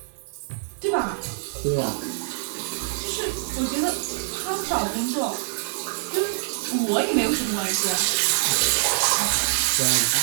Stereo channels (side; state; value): left; silent; digital silence